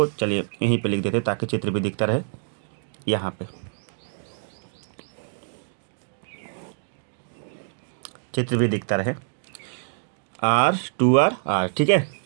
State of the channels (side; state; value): left; silent; digital silence